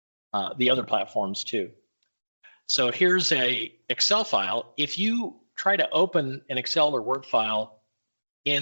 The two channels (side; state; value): both; inverted; correlation -1.00